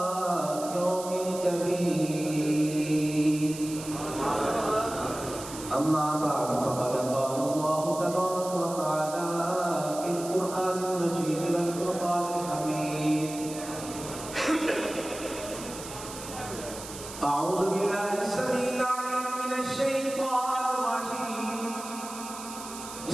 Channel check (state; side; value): noise; right; hiss, 12 dB below the sound